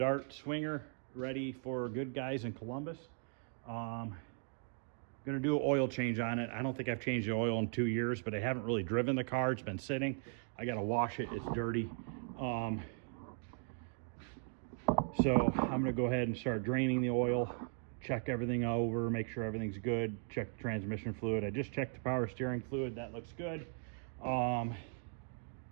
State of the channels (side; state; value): left; silent; 52 dB below the other